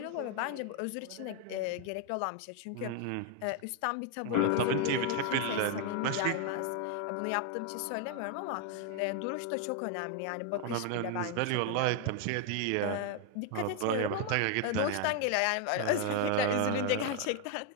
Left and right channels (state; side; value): different; both; correlation 0.01